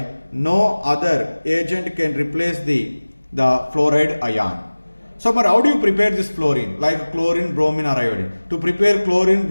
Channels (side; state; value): both; inverted; correlation -1.00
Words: no other agent can replace the fluoride ion. So but how do you prepare this fluorine, like chlorine, bromine or iodine? To prepare chlorine,